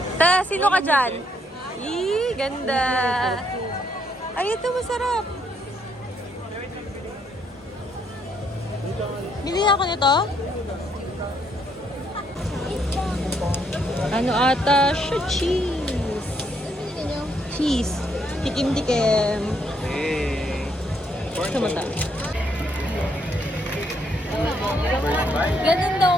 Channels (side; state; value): both; normal; correlation 0.72